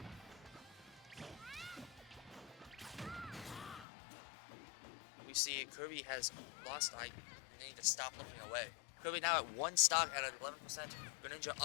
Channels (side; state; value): right; drops out; at 3.9 s